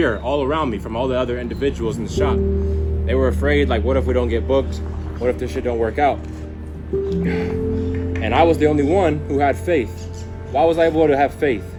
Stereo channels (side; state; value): both; identical; correlation 1.00